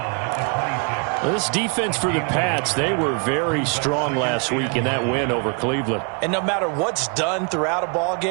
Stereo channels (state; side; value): quieter; left; 35.4 dB